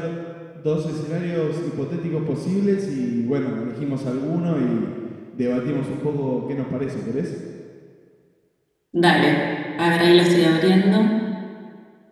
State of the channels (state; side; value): identical; both; correlation 1.00